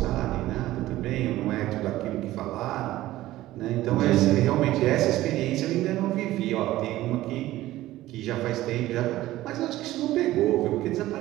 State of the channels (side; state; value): left; quieter; 15.9 dB